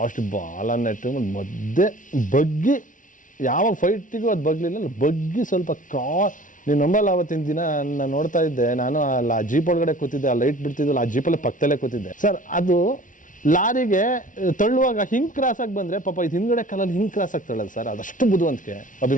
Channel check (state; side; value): late; right; 0.38 ms